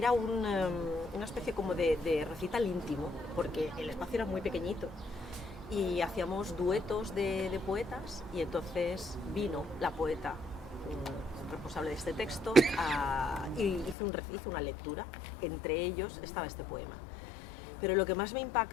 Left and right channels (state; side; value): drops out; right; at 14.0 s